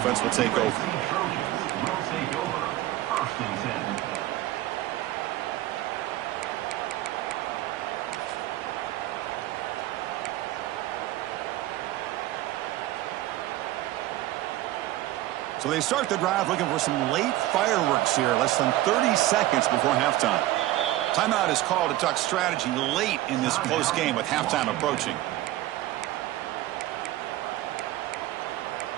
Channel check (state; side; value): quieter; left; 15.6 dB